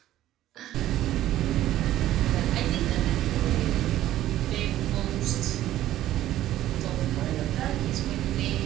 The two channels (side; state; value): left; quieter; 13.6 dB